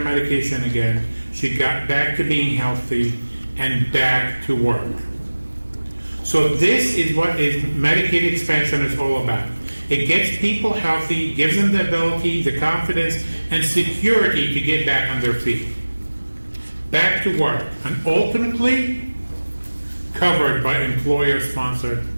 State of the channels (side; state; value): both; inverted; correlation -1.00